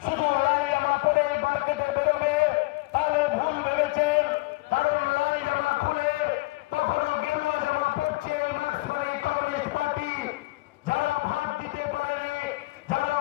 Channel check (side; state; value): right; quieter; 22.5 dB